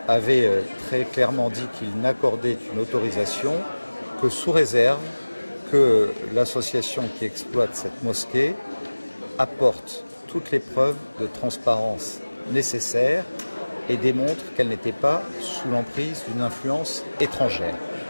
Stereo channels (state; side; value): inverted; both; correlation -1.00